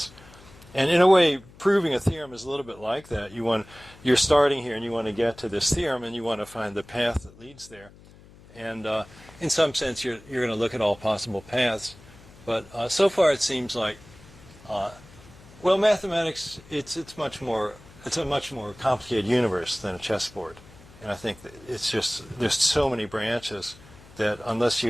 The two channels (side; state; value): left; noise; hum, 23 dB below the sound